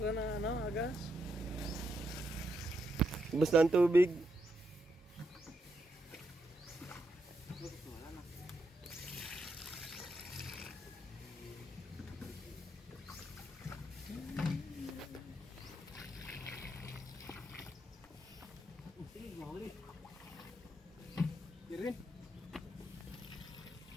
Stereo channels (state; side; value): normal; both; correlation 0.81